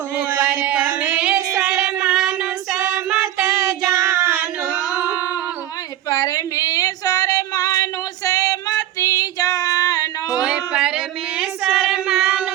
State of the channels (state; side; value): quieter; left; 12.8 dB